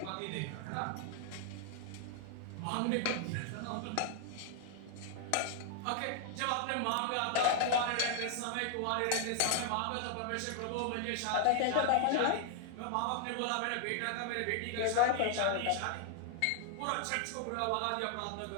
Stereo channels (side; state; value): both; different; correlation 0.00